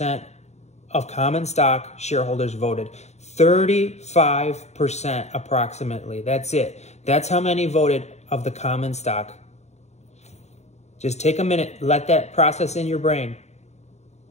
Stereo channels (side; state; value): right; late; 0.32 ms